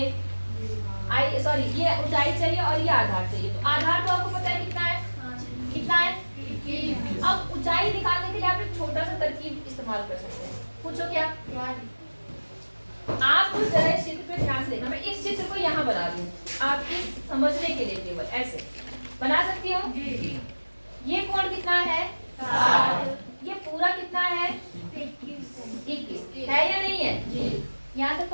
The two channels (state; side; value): inverted; both; correlation -1.00